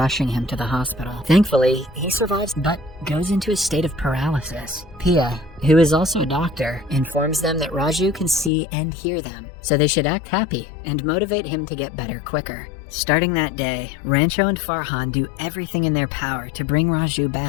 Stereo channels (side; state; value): right; drops out; at 8.5 s